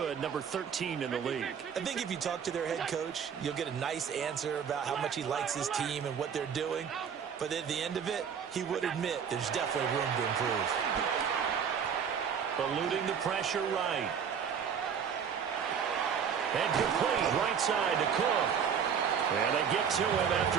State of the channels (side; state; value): left; quieter; 7.4 dB